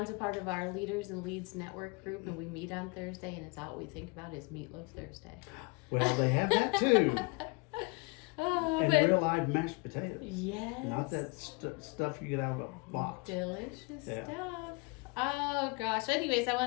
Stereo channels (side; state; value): right; quieter; 29.1 dB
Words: a part of our Leaders and Leads network group, and we meet on Thursday, and it's all we think about is Meatloaf Thursday. Well, they have that too. Oh, And but real live mashed potatoes. yes. Not that stuff you get out of a box. Delicious Yeah. stuff. Oh gosh. Anyways, I